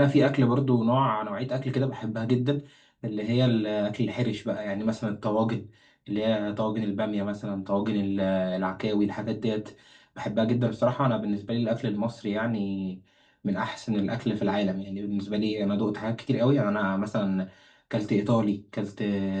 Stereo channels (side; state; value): both; identical; correlation 1.00